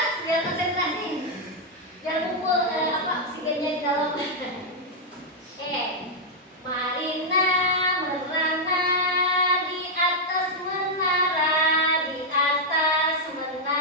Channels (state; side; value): normal; both; correlation -0.03